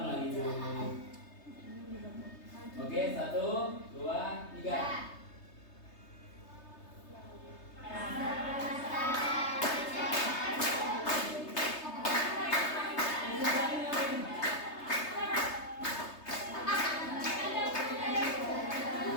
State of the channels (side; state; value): right; late; 3.3 ms